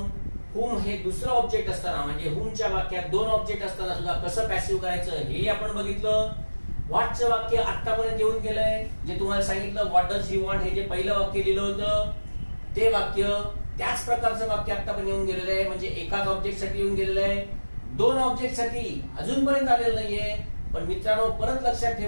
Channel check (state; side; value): inverted; both; correlation -1.00